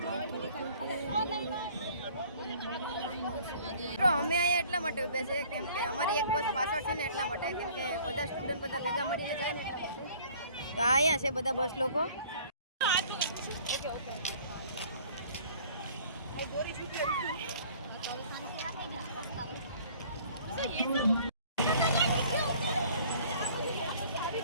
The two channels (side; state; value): both; inverted; correlation -0.53